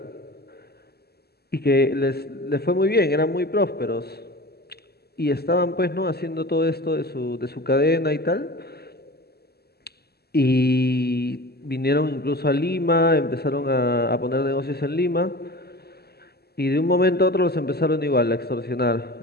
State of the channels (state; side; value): late; right; 0.46 ms